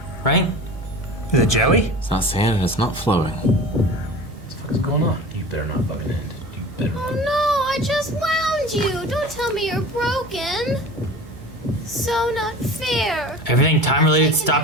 right? Is it jelly? It's not sand and it's not flowing. What's going on? You better not fucking end. You better Oh not. no, I just wound you. Don't tell me you're broken. So not fair. Everything time-related Taking stopped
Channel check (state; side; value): normal; both; correlation 0.37